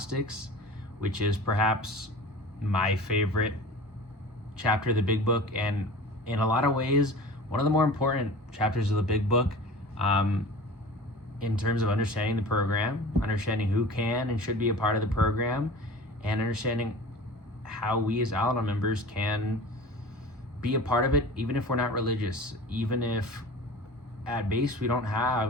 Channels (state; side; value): normal; both; correlation 0.38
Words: which is perhaps my favorite chapter of the big book, and in a lot of ways, one of the more important chapters of the big book in terms of understanding the program, understanding who can and should be a part of the program, and understanding how we as Al-Anon members can be a part of it, even if we're not religious, even if at base we don't